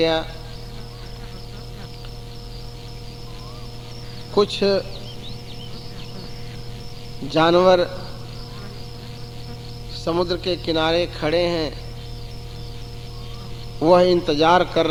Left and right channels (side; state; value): both; identical; correlation 1.00